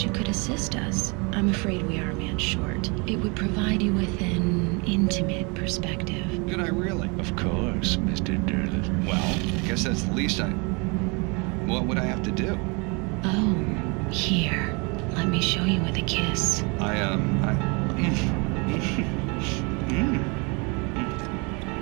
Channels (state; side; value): quieter; left; 30.5 dB